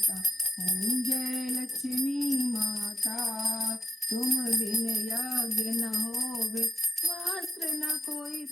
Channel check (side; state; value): both; normal; correlation 0.82